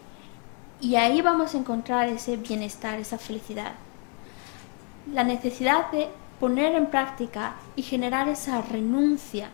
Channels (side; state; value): right; quieter; 39.8 dB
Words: Y ahí vamos a encontrar ese bienestar, esa felicidad. La necesidad de poner en práctica y generar esa renuncia